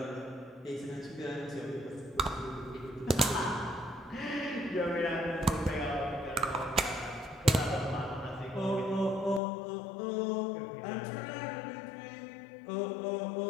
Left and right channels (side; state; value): right; drops out; at 9.4 s